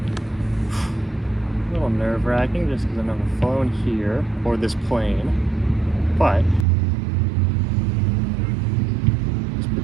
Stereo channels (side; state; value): left; drops out; at 6.7 s